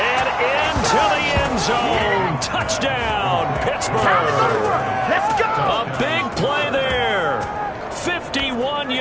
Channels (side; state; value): both; identical; correlation 1.00